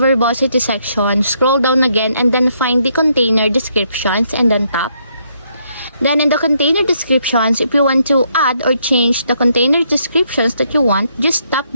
section, scroll down again and then find the Container Descriptions and then tap. Then in the Container Descriptions, if you want to add or change the container descriptions that you want, just tap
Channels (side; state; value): both; inverted; correlation -0.74